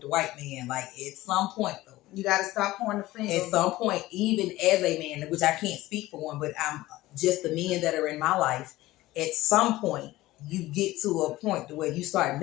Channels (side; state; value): right; quieter; 17.4 dB